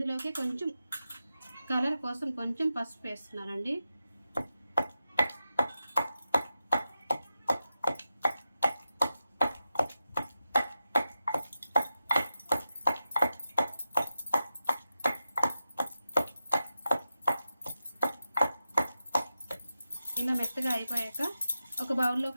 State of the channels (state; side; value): inverted; both; correlation -0.90